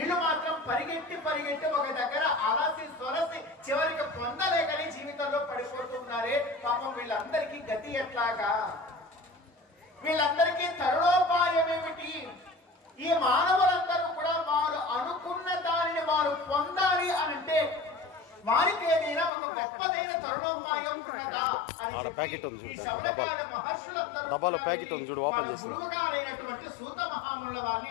మాత్రం పరిగెట్టి ఒక దగ్గర అలసి సొలసి చివరికి పొందలేకని జీవితంలో పడిపోతున్నారే. పాపం వీళ్ళందరికీ గతి ఎట్లాగా? వీళ్ళందరికీ తరుణోపాయం ఏమిటి? ఈ మానవులందరూ కూడా వారు అనుకున్న దానిని వారు పొందాలి అనంటే వారికి ఏదైనా ఒక గొప్పదైన తరుణోపాయం ఉన్నదా అని డబ్బాలో ప్యాకెట్ ఉంది చూడు, ఓపెన్ చేసి గురువుగారైనటువంటి సూత మహామునుల వారిని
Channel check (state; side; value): drops out; right; at 19.3 s